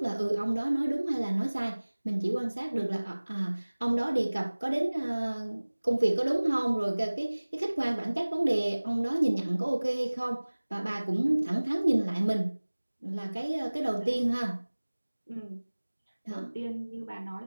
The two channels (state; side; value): inverted; both; correlation -1.00